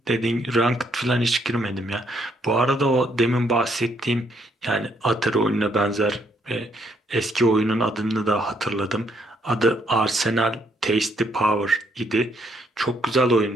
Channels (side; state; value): both; normal; correlation 0.71